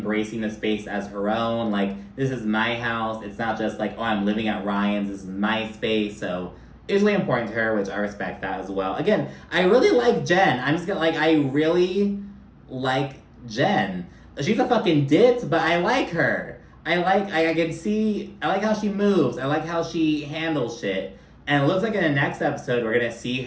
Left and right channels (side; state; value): both; identical; correlation 1.00